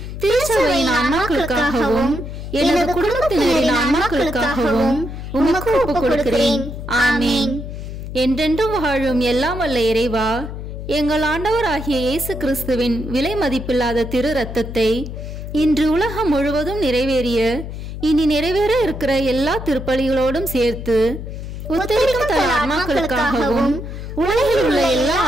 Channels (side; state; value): left; noise; hum, 8 dB below the sound